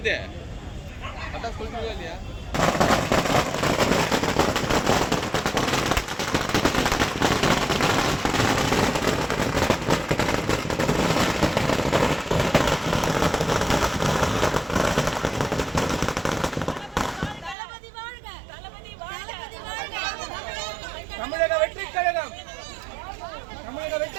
அதான் சொல்லிட்டு இல்லையா? தமிழக வெற்றி கழகம், தமிழக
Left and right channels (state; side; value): drops out; left; at 17.6 s